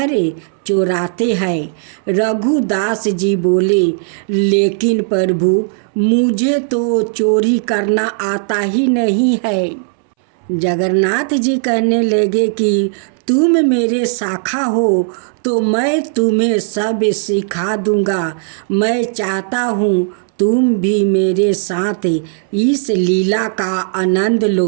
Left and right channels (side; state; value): left; silent; 66 dB below the other